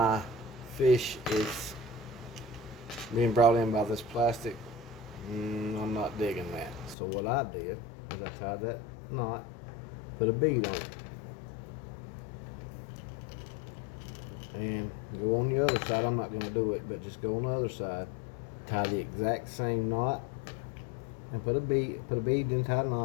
fish is being brought in by this plastic, I'm not digging that. So what I did is I tied that knot, put a bead on it, and go on the other side. I'm not going to do it, but just go on the other side, tie the exact same knot, and put a bead, then tie a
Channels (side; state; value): right; drops out; at 7.0 s